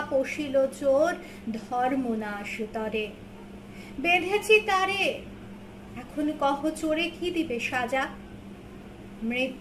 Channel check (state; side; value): identical; both; correlation 1.00